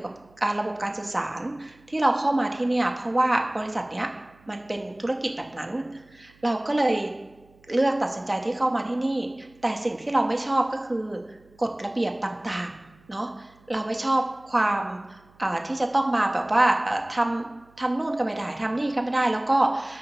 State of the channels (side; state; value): right; noise; hum, 30 dB below the sound